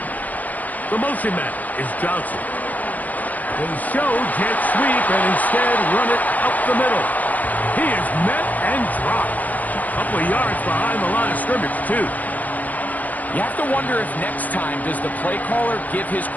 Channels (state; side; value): late; right; 0.080 ms